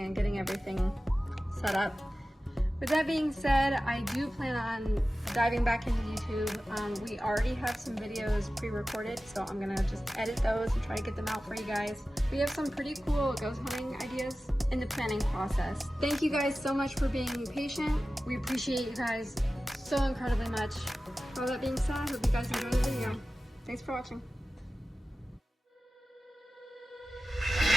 getting everything set up. With that being said, I do plan on diving back into YouTube. We already have some videos pre-recorded, so I'm gonna just edit those and try to get them out for you guys. We have some pretty cool ghost hunting ideas in the planning process. Thank you guys so much for being patient. We appreciate you guys so incredibly much. All that being said, I hope you guys enjoy the video. Thanks for watching.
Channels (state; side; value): normal; both; correlation 0.95